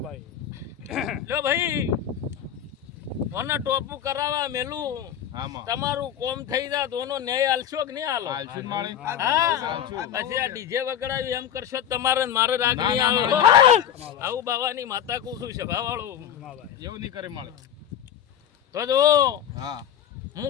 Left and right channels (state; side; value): quieter; right; 9.7 dB